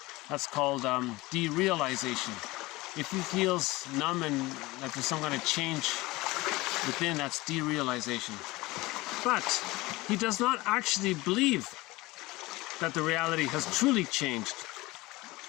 that's called derealization. If he feels numb and that there's some kind of change within, that's derealization. But he does not actually believe that the reality has truly changed.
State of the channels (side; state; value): right; quieter; 20.8 dB